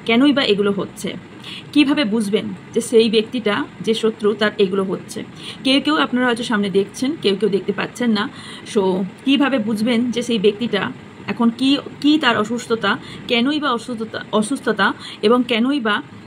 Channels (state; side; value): identical; both; correlation 1.00